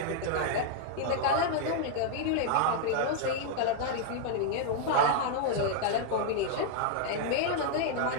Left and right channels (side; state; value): both; different; correlation -0.01